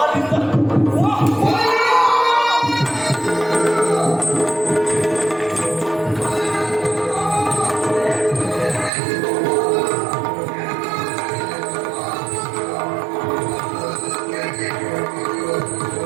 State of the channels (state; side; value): drops out; left; at 8.9 s